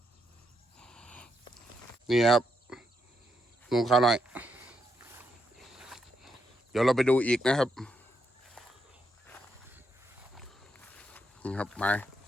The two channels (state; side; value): normal; both; correlation 0.80